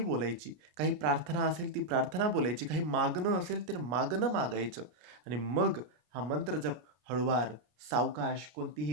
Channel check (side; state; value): left; late; 33 ms